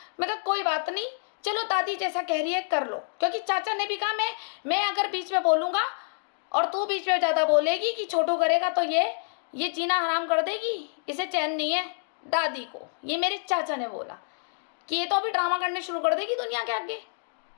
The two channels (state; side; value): silent; right; digital silence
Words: मैं कहा कोई बात नहीं, चलो दादी जैसा कह रही है कर लो, क्योंकि चाचा ने भी कहा मैं अगर बीच में बोलूँगा और तू बीच में ज़्यादा बोलेगी कि छोटू करेगा तो ये जीना हराम कर देगी, इसे चैन नहीं है। दादी को ये मेरे चाचा ने बोला कि ये तो अभी ड्रामा करने शुरू कर देगी दुनिया के आगे,